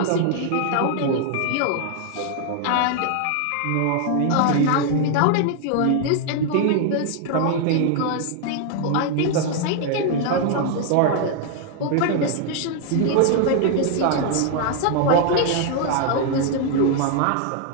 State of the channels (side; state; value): both; different; correlation 0.00